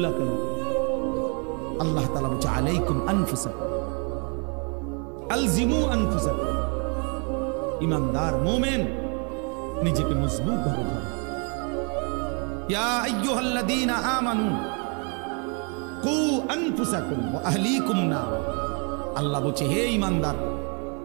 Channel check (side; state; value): left; quieter; 35.2 dB